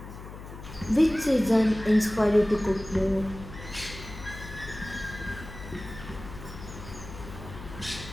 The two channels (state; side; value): noise; left; hum, 13 dB below the sound